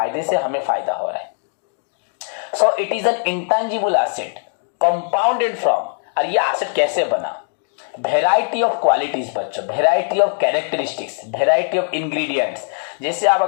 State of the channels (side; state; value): right; silent; digital silence